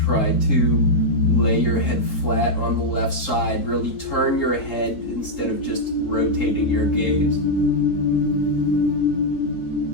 to lay your head flat on the left side. Really turn your head instead of just rotating your gaze.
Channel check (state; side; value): late; right; 3.8 ms